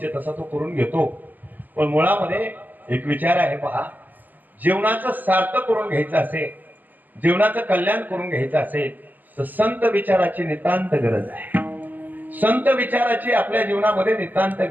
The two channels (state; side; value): late; left; 0.085 ms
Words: तसा तो करून घेतो. पण मुळामध्ये एक विचार आहे पहा, जीवनाचं सार्थक करून घ्यायचं असेल, जीवनाचं कल्याण करून घ्यायचं असेल तर संत विचाराची नितांत गरज आहे. संत विचाराची आपल्या जीवनामध्ये नितांत